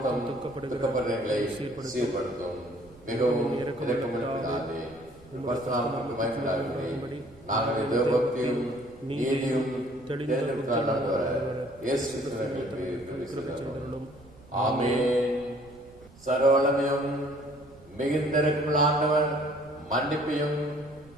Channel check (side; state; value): right; noise; rumble, 24 dB below the sound